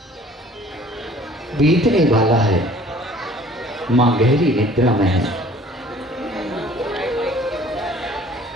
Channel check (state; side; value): normal; both; correlation 0.53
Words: बीतने वाला है। मां गहरी निद्रा में है।